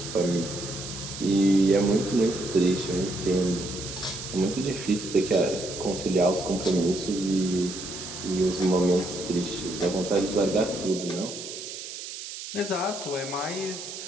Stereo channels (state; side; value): noise; right; hiss, 9 dB below the sound